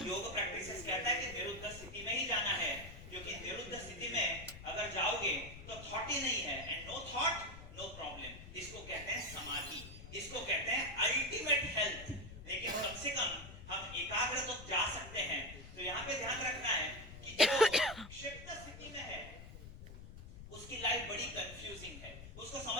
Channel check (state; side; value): noise; left; rumble, 13 dB below the sound